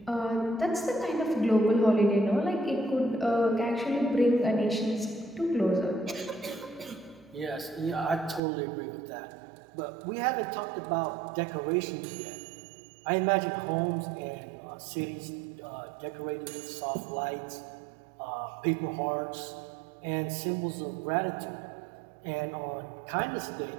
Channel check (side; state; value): left; drops out; at 8.4 s